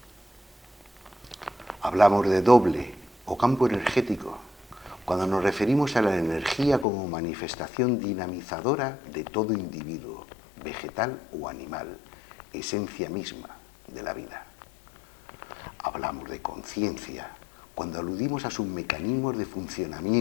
Hablamos de doble o campo energético cuando nos referimos a la energía como manifestación dinamizadora de todo individuo, vegetal o animal, esencia misma de la vida. Hablamos de conciencia cuando aludimos a sus mecanismos de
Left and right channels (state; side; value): drops out; right; at 6.9 s